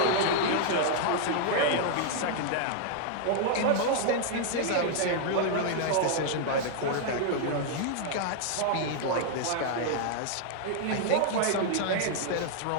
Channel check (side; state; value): both; different; correlation 0.00